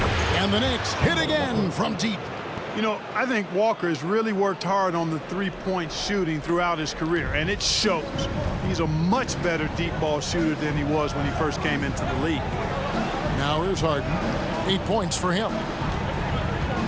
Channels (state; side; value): identical; both; correlation 1.00